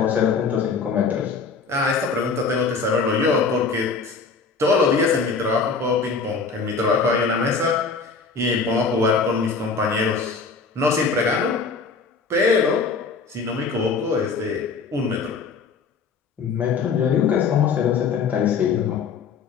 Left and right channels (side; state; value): right; quieter; 4.9 dB